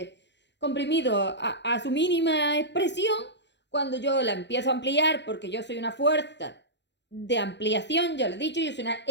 comprimido a su mínima expresión, cuando yo la empiezo a ampliar, porque yo soy una fuerza de ampliación, ya lo he dicho, yo soy una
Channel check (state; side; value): late; right; 0.51 ms